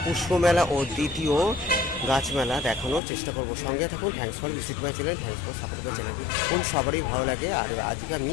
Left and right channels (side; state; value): right; drops out; at 3.0 s